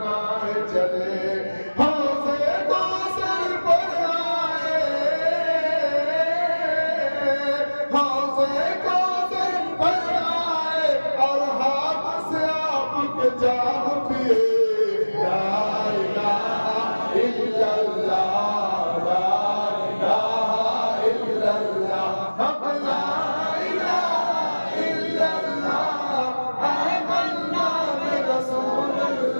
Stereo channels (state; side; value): inverted; both; correlation -1.00